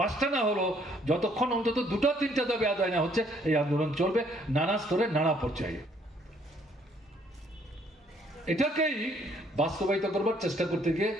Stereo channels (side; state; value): both; normal; correlation 0.65